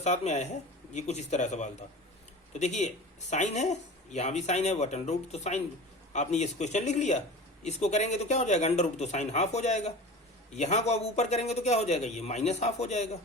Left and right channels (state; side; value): normal; both; correlation 0.35